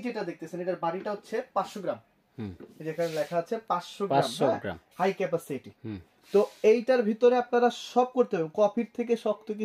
যেটা দেখতেছেন, এটার বাটিটা হচ্ছে 500 গ্রাম। যেখানে লেখা আছে 500 গ্রাম হাই ক্যাপাসিটি। তো এইটার ভিতরে আপনারা সব করতে হবে। কফির থেকে শক্ত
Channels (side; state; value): both; identical; correlation 1.00